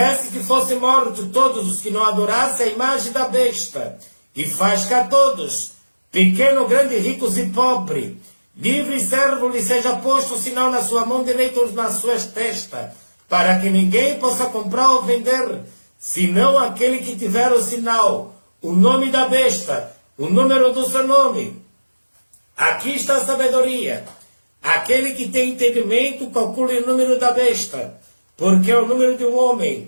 que fossem mortos todos os que não adorassem a imagem da besta, e faz que a todos, pequeno, grande, ricos e pobre, livre e servo, lhe seja posto o sinal na sua mão direita ou nas suas testas, para que ninguém possa comprar ou vender, senão aquele que tiver o sinal, o nome da besta, o número do seu nome. Aqui está a sabedoria. Aquele que tem entendimento, calcule o número da besta, porque é o número de um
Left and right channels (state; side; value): inverted; both; correlation -1.00